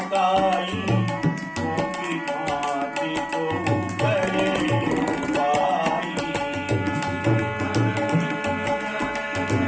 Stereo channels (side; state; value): both; identical; correlation 1.00